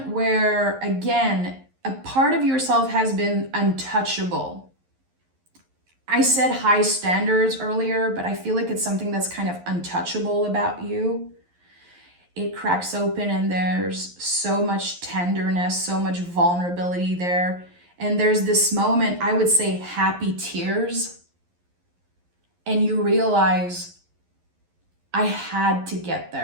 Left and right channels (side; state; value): left; late; 11 ms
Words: where, again, a part of yourself has been untouchable. I said high standards earlier, but I feel like it's something that's kind of untouchable about you. It cracks open and there's so much tenderness, so much vulnerability there. And there's this moment, I would say happy tears. And you realize, I had to get